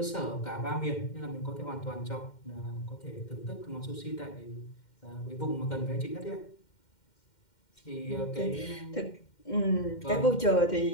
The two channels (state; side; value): late; right; 2.1 ms